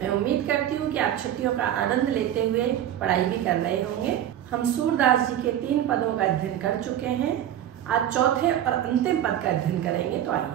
उम्मीद करती हूँ कि आप छुट्टियों का आनंद लेते हुए पढ़ाई भी कर रहे होंगे। हम सूरदास जी के 3 पदों का अध्ययन कर चुके हैं। आज चौथे और अंतिम पद का अध्ययन करेंगे। तो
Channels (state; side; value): quieter; left; 11.2 dB